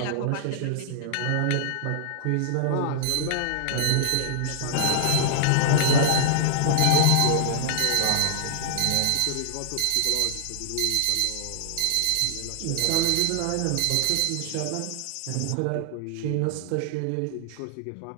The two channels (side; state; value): both; different; correlation -0.01